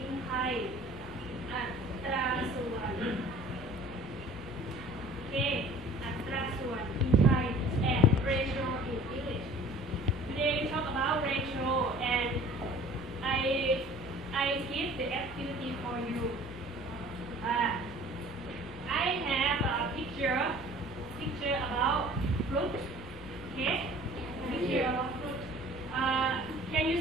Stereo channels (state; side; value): normal; both; correlation 0.47